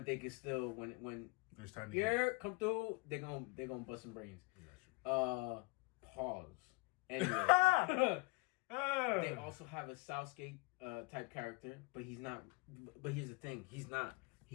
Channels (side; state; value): right; quieter; 26.8 dB